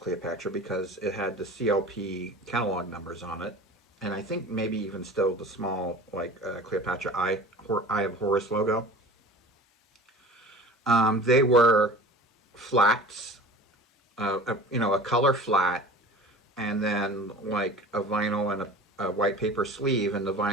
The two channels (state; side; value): normal; both; correlation 0.39